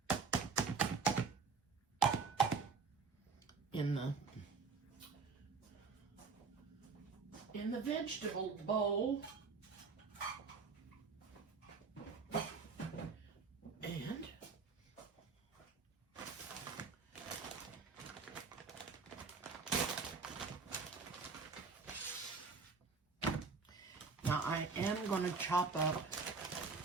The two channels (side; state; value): left; quieter; 4.8 dB